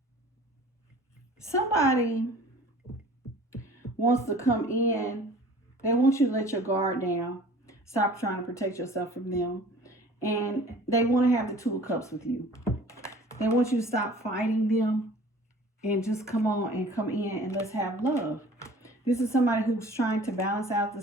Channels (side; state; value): both; normal; correlation 0.47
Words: Somebody wants to come in. They want you to let your guard down. Stop trying to protect yourself from them. And they want to have the Two of Cups with you. They want you to stop fighting them. and just come on and come in and let's have love. This is somebody who's trying to balance out the